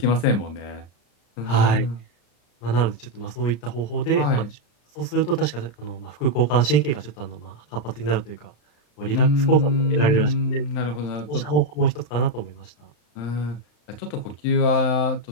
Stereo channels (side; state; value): right; late; 34 ms